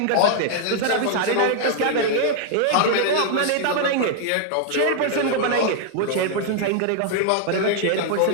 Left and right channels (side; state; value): both; different; correlation 0.00